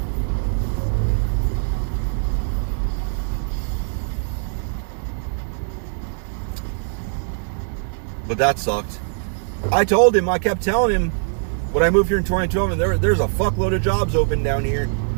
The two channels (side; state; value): left; silent; 56 dB below the other